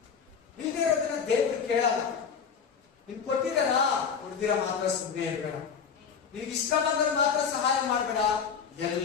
ಇಲ್ಲದೆ ಇರೋದನ್ನ ದೇವ್ರು ಕೇಳಲ್ಲ. ನಿನ್ ಕೊಟ್ಟಿದಾರ, ಕೊಡ್ದಿರ ಮಾತ್ರ ಸುಮ್ಮನೆ ಇರ್ಬೇಡ. ನಿನ್ಗೆ ಇಷ್ಟ ಬಂದ್ರೆ ಮಾತ್ರ ಸಹಾಯ ಮಾಡ್ಬೇಡ,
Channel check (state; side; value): quieter; right; 6.5 dB